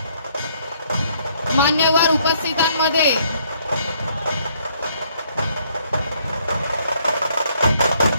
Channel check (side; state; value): both; inverted; correlation -0.67